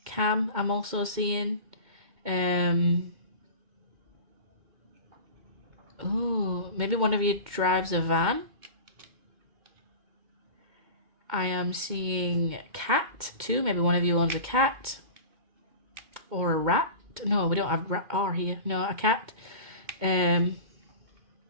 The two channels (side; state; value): left; late; 2.1 ms